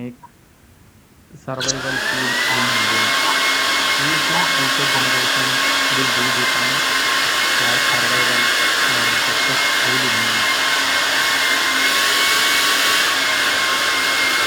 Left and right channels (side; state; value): both; identical; correlation 1.00